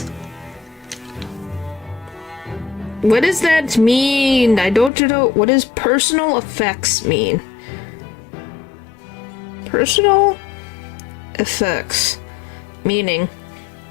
What does that mean? I don't know. What does personal effects mean? Personal effects. Meaning.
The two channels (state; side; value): drops out; right; at 4.9 s